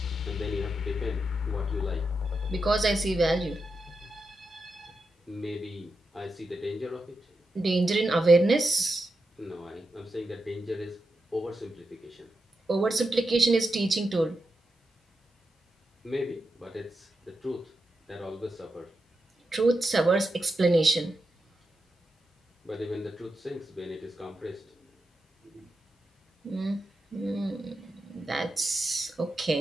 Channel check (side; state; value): both; normal; correlation 0.87